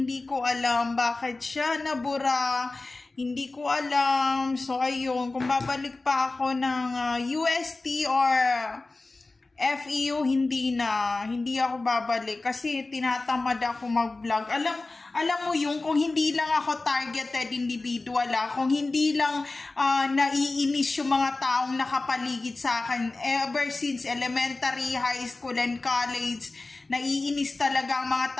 ko alam bakit siya nabura. Hindi ko alam. So ayun, kung babalik pa ako ng UST or FEU, hindi ako babalik kasi tinatamad ako mag-vlog. Alam mo yung kung hindi lang ako targeted individual, kung hindi lang naiinis yung mga taong nakapaligid sa akin ever since elementary, high school, and college, naiinis talaga ang mga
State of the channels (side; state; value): right; quieter; 3.3 dB